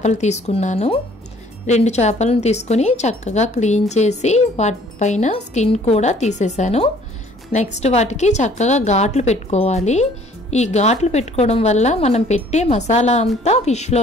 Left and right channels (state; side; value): normal; both; correlation 0.57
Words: తీసుకున్నాను. 2 చేపలను తీసుకొని చక్కగా క్లీన్ చేసి వాటిపైన స్కిన్ కూడా తీసేసాను. నెక్స్ట్ వాటికి చక్కగా ఘాట్లు పెట్టుకోవాలి. ఈ ఘాట్లు పెట్టుకోవడం వల్ల మనం పెట్టే మసాలా అంతా